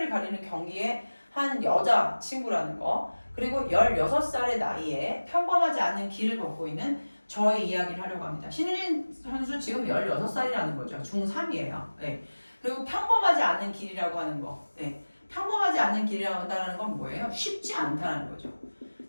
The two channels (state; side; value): inverted; both; correlation -1.00